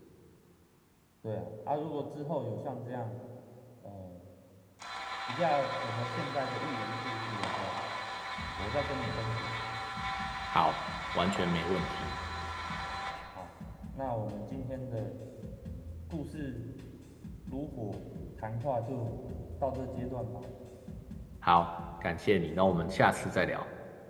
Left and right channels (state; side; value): identical; both; correlation 1.00